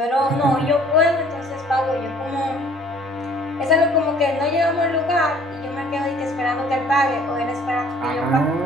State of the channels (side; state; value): both; normal; correlation 0.56